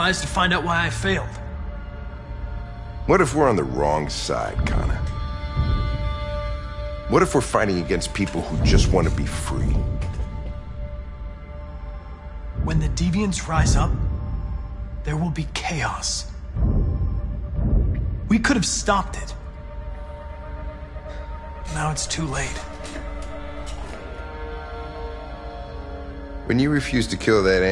to find out why I failed. What if we're on the wrong side, Connor? What if we're fighting against people who just want to be free? When the deviants rise up, there will be chaos. We could have stopped it. Now it's too late. When you refused to kill that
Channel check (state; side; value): identical; both; correlation 1.00